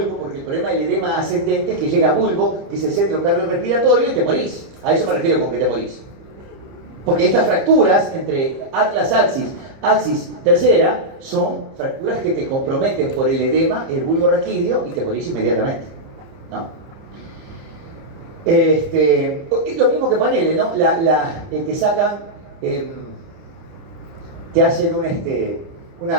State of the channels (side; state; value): left; late; 30 ms